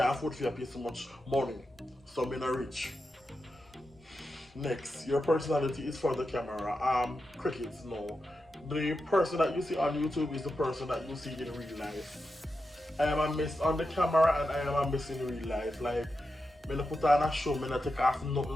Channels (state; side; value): normal; both; correlation 0.89